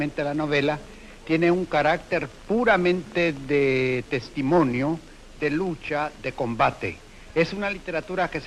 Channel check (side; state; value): both; identical; correlation 1.00